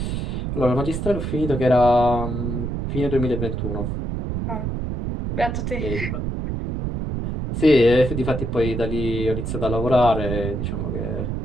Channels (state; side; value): noise; right; rumble, 3 dB below the sound